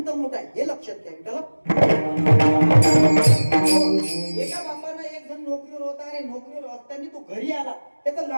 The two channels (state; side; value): inverted; both; correlation -1.00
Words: मोठा आहे, हे लक्षात घ्या. एका बापानं एक जण नोकरीवर होता आणि नोकरीवर असताना तो घरी आला. त्याचा